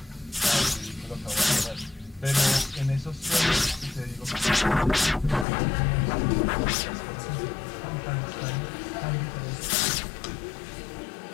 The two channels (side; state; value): right; drops out; at 5.5 s